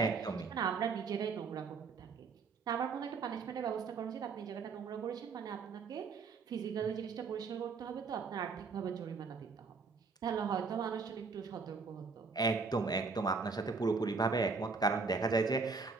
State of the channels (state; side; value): quieter; left; 4.7 dB